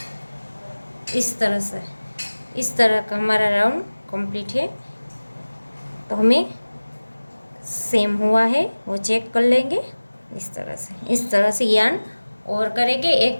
इस तरह से। इस तरह का हमारा राउंड कंप्लीट है। तो हमें सेम हुआ है वो चेक कर लेंगे इस तरह से यान और करेंगे एक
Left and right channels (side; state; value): both; inverted; correlation -1.00